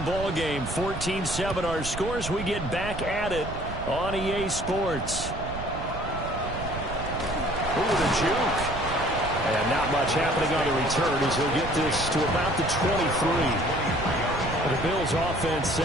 ball game, 14-7 our scores. We get back at it on EA Sports. Ooh, the juke. And not much happening on the return as he'll get this to about the 23. The Bills offense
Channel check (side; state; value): right; noise; rumble, 8 dB below the sound